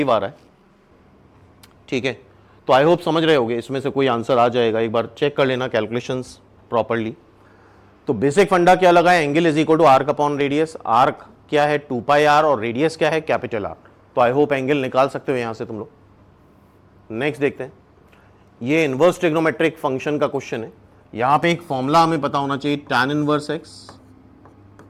आ रहा है, ठीक है, तो आई होप समझ रहे होगे, इसमें से कोई आंसर आ जाएगा, एक बार चेक कर लेना कैलकुलेशंस प्रॉपर्ली। तो बेसिक फंडा क्या लगा है, angle is equal to arc upon radius, arc क्या है 2 पाई r और रेडियस क्या है कैपिटल R, तो आई होप एंगल निकाल सकते हो यहां से तुम लोग। नेक्स्ट देखते हैं, ये इनवर्स ट्रिग्नोमेट्रिक फंक्शन का क्वेश्चन है, यहां पे एक फॉर्मूला हमें पता होना चाहिए, tan inverse x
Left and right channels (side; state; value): both; identical; correlation 1.00